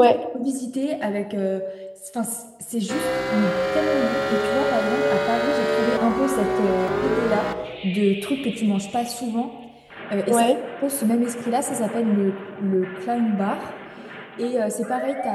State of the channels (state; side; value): identical; both; correlation 1.00